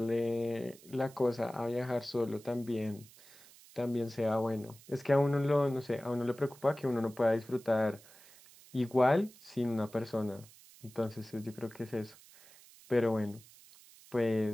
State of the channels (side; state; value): right; noise; hiss, 23 dB below the sound